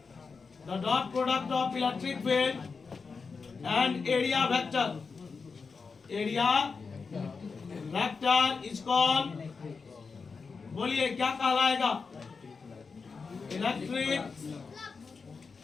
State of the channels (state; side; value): quieter; right; 4.9 dB